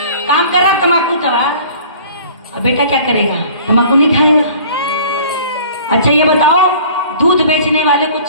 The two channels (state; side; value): inverted; both; correlation -0.48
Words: काम कर रहा तम्बाकू दवा, अब बेटा क्या करेगा? तम्बाकू नहीं खाएगा। अच्छा ये बताओ, दूध बेचने वाले को